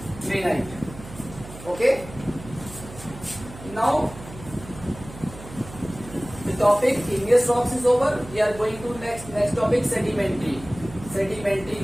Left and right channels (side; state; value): right; noise; hum, 15 dB below the sound